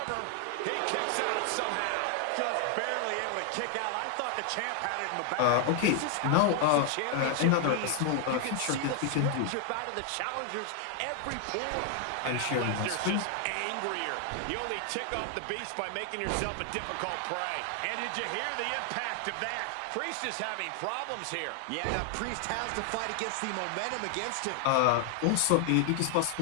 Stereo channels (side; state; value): both; different; correlation 0.00